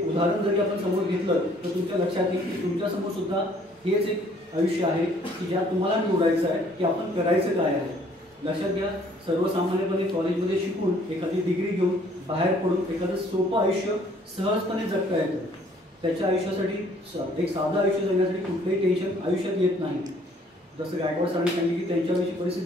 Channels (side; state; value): both; normal; correlation 0.60